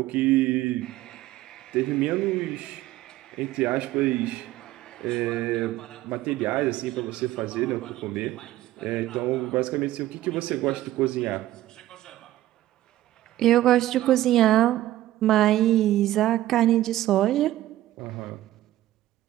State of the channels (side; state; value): left; quieter; 14.8 dB